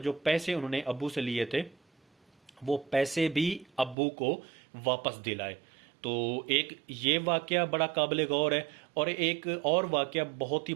पैसे उन्होंने अब्बू से लिए थे वो पैसे भी अब्बू को वापस दिलाए। तो एक ये वाक़या बड़ा काबिल गौर है। और एक और वाक़या बहुत ही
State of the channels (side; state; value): left; drops out; at 4.0 s